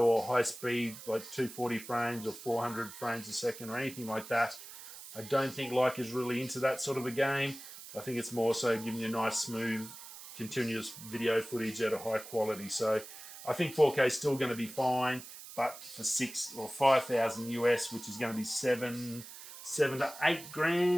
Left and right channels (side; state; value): right; noise; hiss, 14 dB below the sound